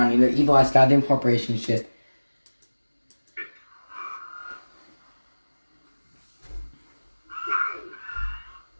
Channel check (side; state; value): both; inverted; correlation -1.00